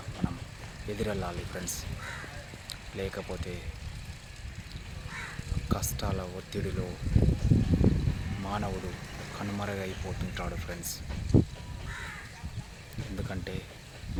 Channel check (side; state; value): both; identical; correlation 1.00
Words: మనం ఎదురెళ్ళాలి ఫ్రెండ్స్. లేకపోతే కష్టాల ఒత్తిడిలో మానవుడు కనుమరుగైపోతుంటాడు ఫ్రెండ్స్. ఎందుకంటే